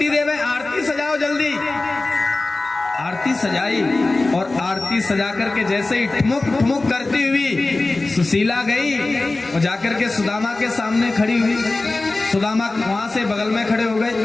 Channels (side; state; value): right; quieter; 3.2 dB